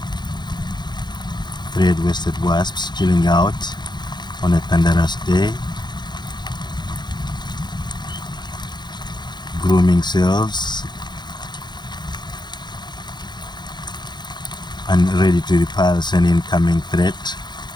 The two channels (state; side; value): late; right; 0.21 ms